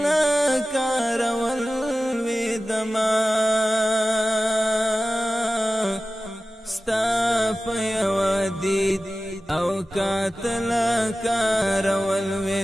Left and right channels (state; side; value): normal; both; correlation 0.95